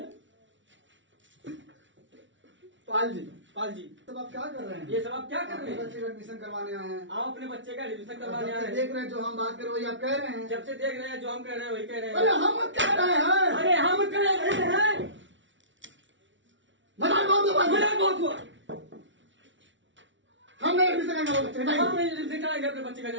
पाल जी, पाल जी तब आप क्या कर रहे हैं? ये सब आप क्या कर अपने रहे हैं? बच्चे का एडमिशन करवाने आए हैं। आप अपने बच्चे का एडमिशन करवाने जब आए से हैं। देख रहे हैं, जो हम बात कर रहे वही आप कह रहे हैं। जब से देख रहे हैं जो हम कह रहे हैं वही कह रहे अरे हैं। हम कह रहे हैं। अरे हम कह रहे हैं। मजाक बहुत हुआ। मजाक बहुत हुआ। हम नहीं एडमिशन करेंगे वो बच्चे का। हम एडमिशन कराएंगे अपने बच्चे का।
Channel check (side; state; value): left; late; 0.55 ms